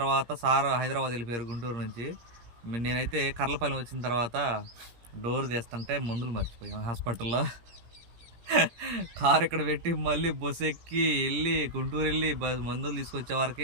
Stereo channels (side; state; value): left; late; 17 ms